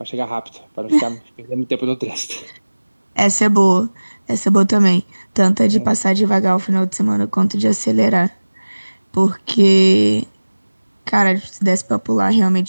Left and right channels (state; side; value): inverted; both; correlation -1.00